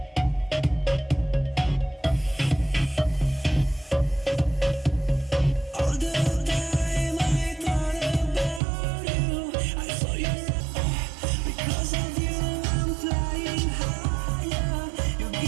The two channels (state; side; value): drops out; left; at 8.6 s